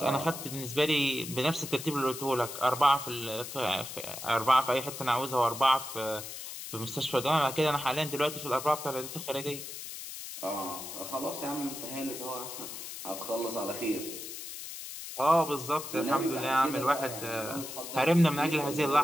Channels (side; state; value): left; noise; hiss, 9 dB below the sound